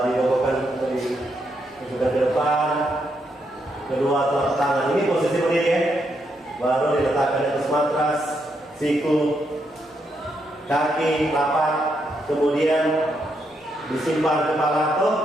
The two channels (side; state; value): both; normal; correlation 0.79